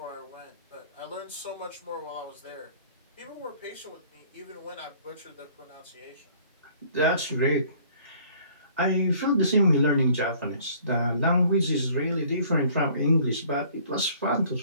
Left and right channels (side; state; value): both; inverted; correlation -0.56